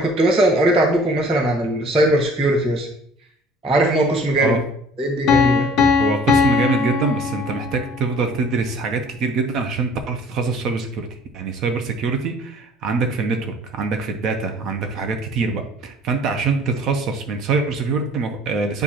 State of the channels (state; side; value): normal; both; correlation 0.52